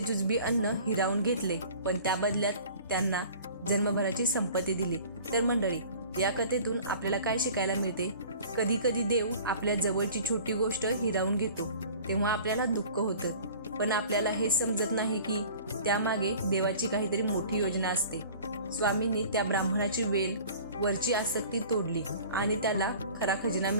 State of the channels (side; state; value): both; inverted; correlation -0.45